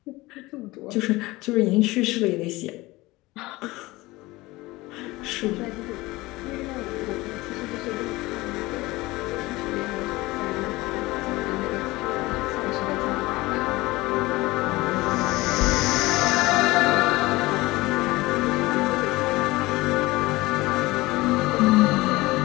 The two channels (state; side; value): quieter; right; 20.4 dB